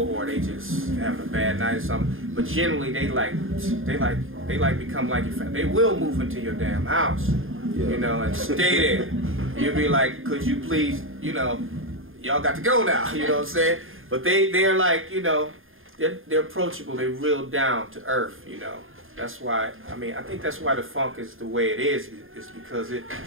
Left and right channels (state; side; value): late; left; 0.59 ms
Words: or they just having a bad night or something. But generally they become like your family. They will move into your damn house, you know, and stay there. You'll be like, could you please, you know, y'all got to go now, you know what I'm saying? But they're like, you know, they're approachable, they're real down to earth, you know. That's why, I mean, I think that's why the funk is the way it is because it